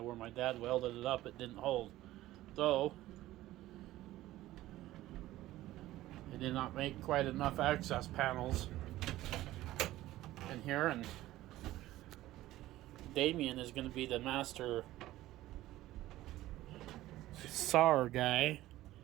my dad welded it up, it didn't hold. So it did not make quite enough access panels in here, and Damien is going to be the master sawer guy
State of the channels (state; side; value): quieter; left; 15.7 dB